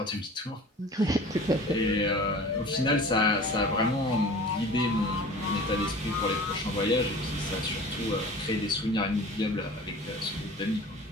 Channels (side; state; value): both; normal; correlation 0.41